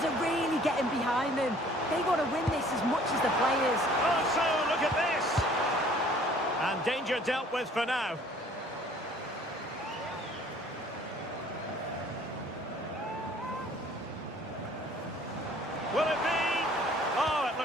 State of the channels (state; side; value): normal; both; correlation 0.55